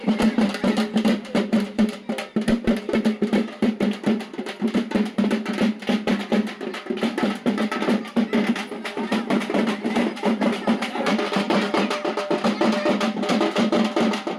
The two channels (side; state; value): both; identical; correlation 1.00